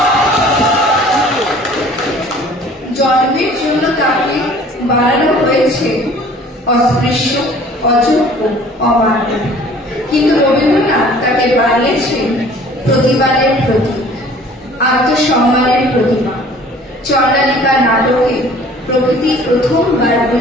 জন্মের জন্য তাকে বাড়ানো হয়েছে অস্পৃশ্য অযোগ্য অমান্য কিন্তু রবীন্দ্রনাথ তাকে বানিয়েছেন প্রতিবাদের প্রতীক আত্মসম্মানের প্রতিমা চন্দ্রালিকা নাটকে প্রকৃতি প্রথমবার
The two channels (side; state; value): both; normal; correlation 0.51